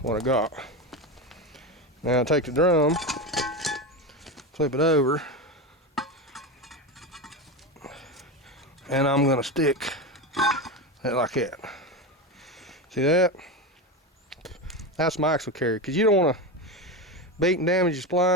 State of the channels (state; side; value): normal; both; correlation 0.18